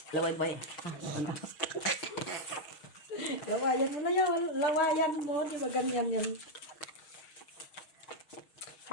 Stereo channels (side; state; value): right; late; 6.4 ms